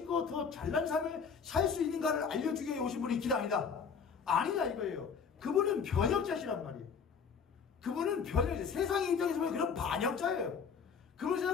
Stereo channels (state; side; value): quieter; right; 6.2 dB